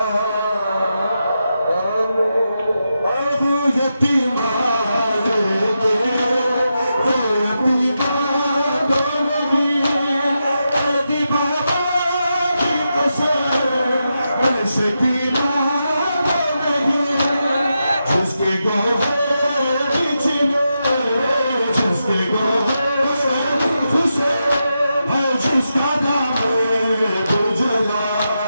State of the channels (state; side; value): inverted; both; correlation -0.87